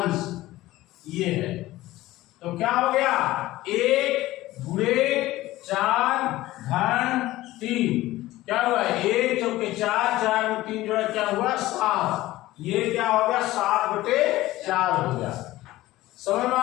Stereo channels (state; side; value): quieter; right; 16.9 dB